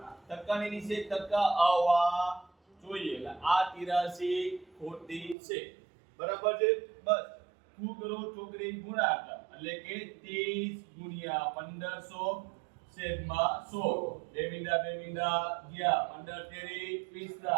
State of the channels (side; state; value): left; drops out; at 5.4 s